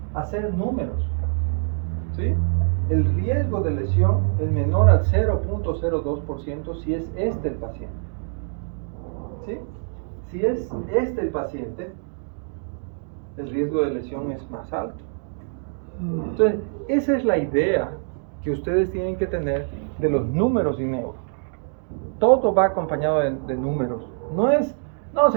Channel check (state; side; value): silent; left; 62 dB below the other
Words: hacer números, ¿sí? El riesgo de lesión es menor al 0.02% si es este el paciente, ¿sí? Si es este el paciente, el riesgo de lesión es más alto. Entonces, esa es la idea que ustedes tienen que tener de los números y neuro. Todo va acompañado de números. No es, no,